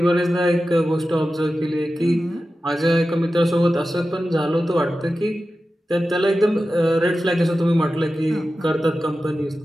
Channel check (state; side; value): normal; both; correlation 0.93